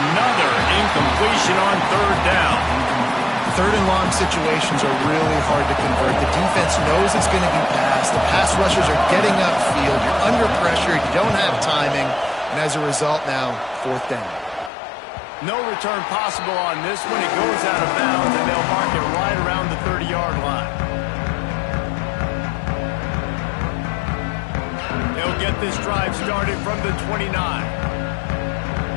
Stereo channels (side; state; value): right; drops out; at 14.7 s